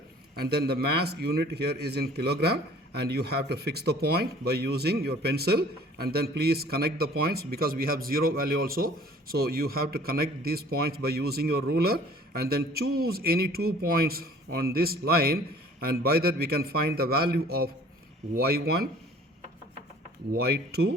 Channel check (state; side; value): normal; both; correlation 0.51